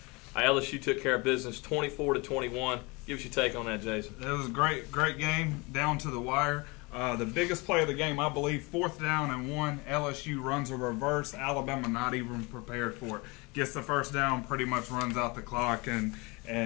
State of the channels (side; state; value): right; quieter; 26.6 dB